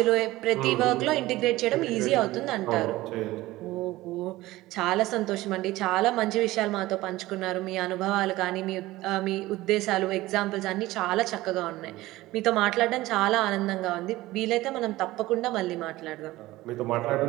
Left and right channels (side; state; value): left; quieter; 17.7 dB